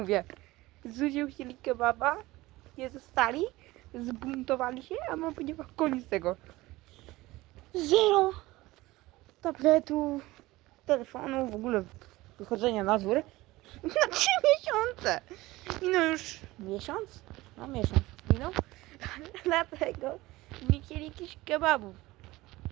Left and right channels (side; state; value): left; quieter; 19.1 dB